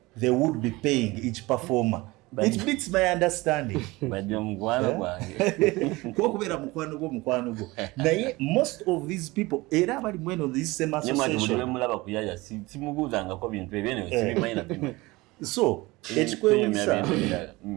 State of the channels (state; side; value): quieter; left; 21.7 dB